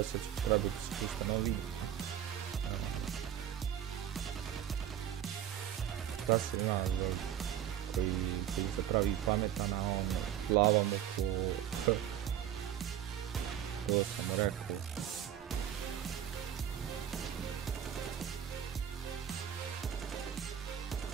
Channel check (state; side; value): quieter; left; 10.4 dB